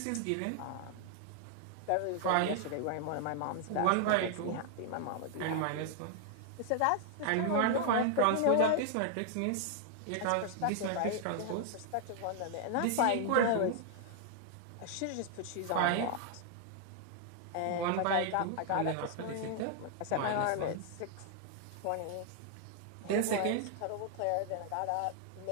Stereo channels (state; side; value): different; both; correlation 0.00